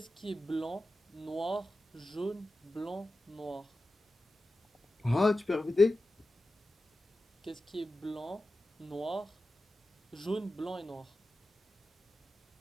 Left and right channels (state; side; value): normal; both; correlation 0.93